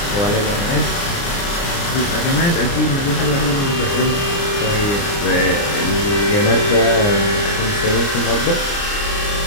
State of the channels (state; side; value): late; right; 29 ms